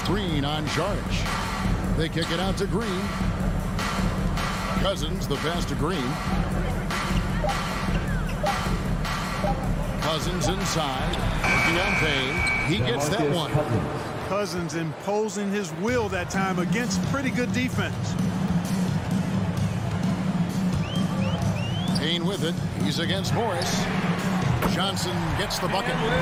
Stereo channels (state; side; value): identical; both; correlation 1.00